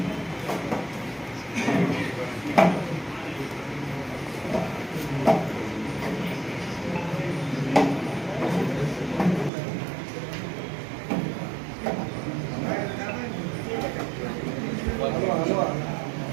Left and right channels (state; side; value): drops out; left; at 9.5 s